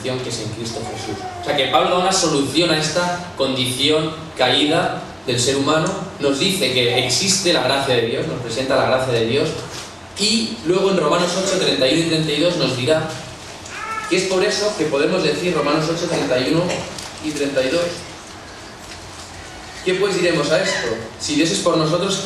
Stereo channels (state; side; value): identical; both; correlation 1.00